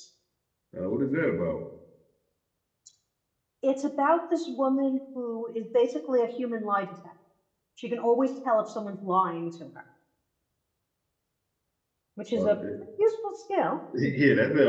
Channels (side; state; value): both; identical; correlation 1.00